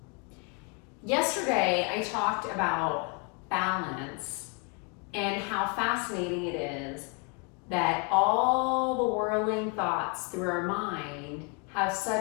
Yesterday, I talked about balance and how fascinating it is that all the whirling thoughts through our mind have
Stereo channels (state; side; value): quieter; right; 34.5 dB